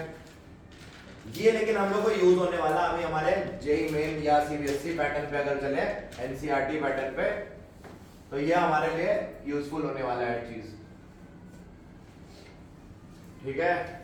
ये लेकिन हम लोग को यूज होने वाला अभी हमारे जेई मेन या सीबीएसई पैटर्न पे अगर चले, एनसीईआरटी पैटर्न पे, तो ये हमारे लिए यूजफुल होने वाला है चीज, ठीक है?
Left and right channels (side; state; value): both; identical; correlation 1.00